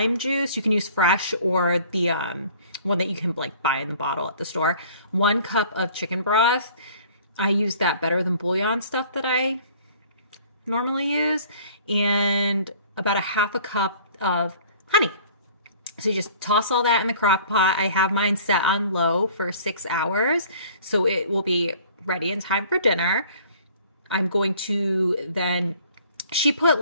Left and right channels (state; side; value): inverted; both; correlation -0.51